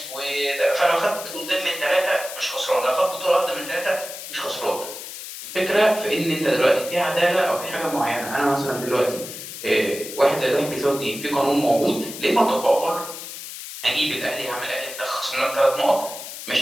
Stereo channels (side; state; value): left; noise; hiss, 10 dB below the sound